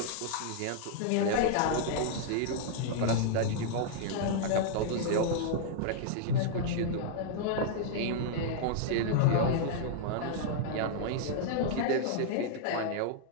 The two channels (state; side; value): different; both; correlation -0.01